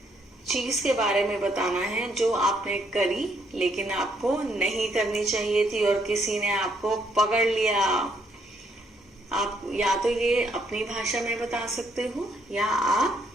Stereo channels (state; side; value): normal; both; correlation 0.71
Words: चीज के बारे में बताना है जो आपने करी लेकिन आपको नहीं करनी चाहिए थी और किसी ने आपको पकड़ लिया. आप या तो ये अपनी भाषा में बता सकते हो या आप